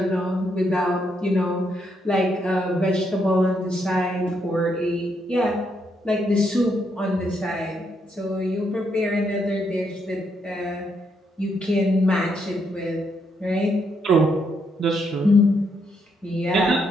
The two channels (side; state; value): both; normal; correlation 0.76